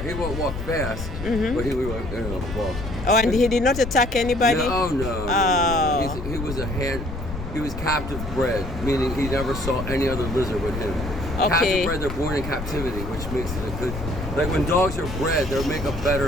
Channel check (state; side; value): noise; left; rumble, 8 dB below the sound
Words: he won't walk fast, Mm-hmm. but he would walk. Oh, and he did not attack anybody? No, no. Oh. He was he was captive bred, meaning he never saw any other lizard with him. Okay. Captive bred, they're born in captivity, which makes it a good. Like when dogs are bred, they make a